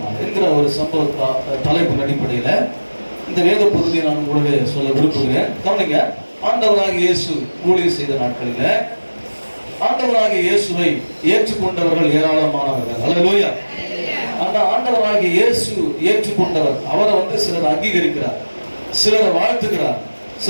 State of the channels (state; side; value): inverted; both; correlation -1.00